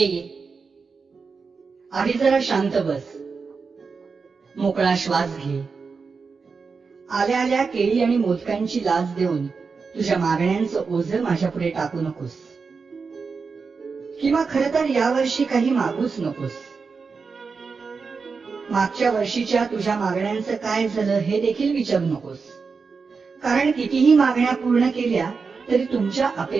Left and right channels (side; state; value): left; quieter; 5.0 dB